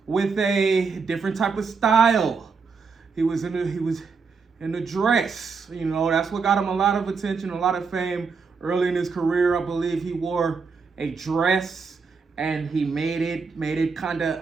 with a different type of style. He was in a dress. You know, that's what got him a lot of attention, a lot of fame. Early in his career, I believe he wore a dress and he made it kind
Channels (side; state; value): left; quieter; 5.1 dB